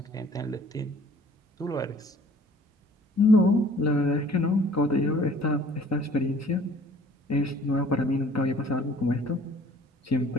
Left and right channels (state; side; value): normal; both; correlation 0.53